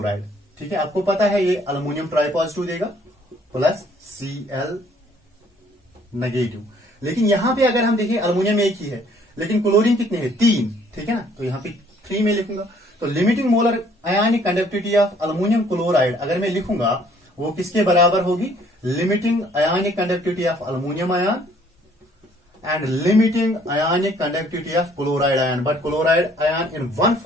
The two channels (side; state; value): both; normal; correlation 0.61